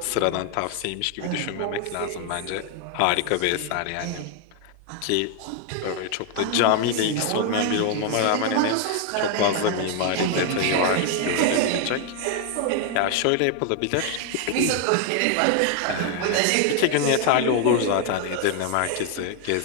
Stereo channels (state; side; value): different; both; correlation 0.00